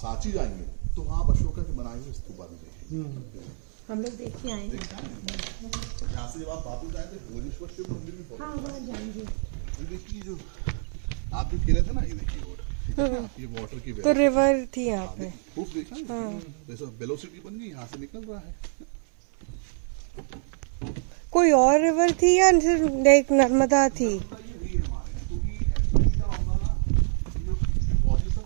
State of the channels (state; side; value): silent; left; 60 dB below the other